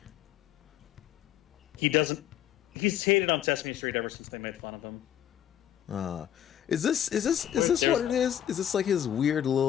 He doesn't. He's hated on Sesame Street ever since they made fun of him. Is this what it is? Is this like his weird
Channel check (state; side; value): quieter; right; 10.7 dB